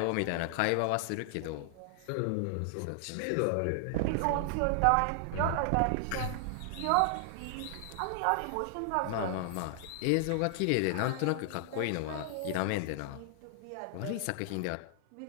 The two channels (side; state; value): both; different; correlation -0.01